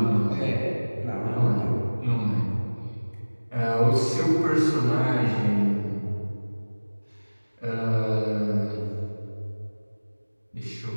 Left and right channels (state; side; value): inverted; both; correlation -1.00